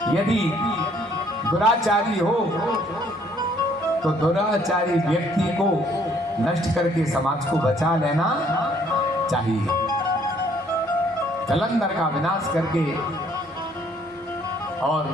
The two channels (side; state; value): both; normal; correlation 0.63